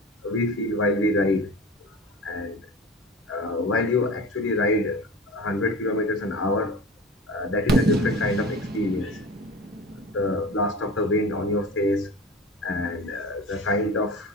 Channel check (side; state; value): both; normal; correlation 0.34